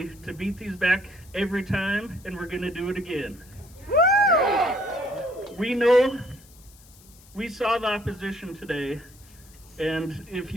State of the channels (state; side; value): noise; left; hiss, 24 dB below the sound